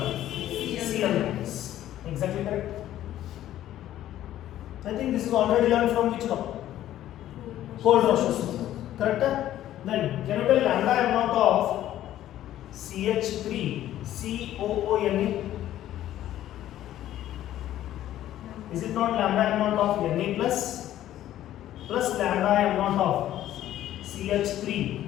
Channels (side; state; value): right; quieter; 12.8 dB